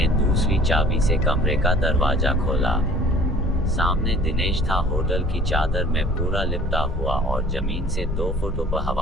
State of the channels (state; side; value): normal; both; correlation 0.50